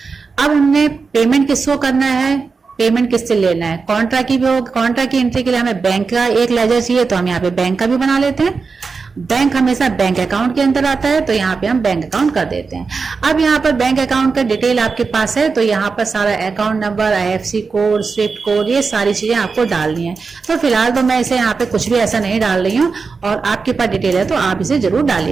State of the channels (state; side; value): quieter; left; 4.7 dB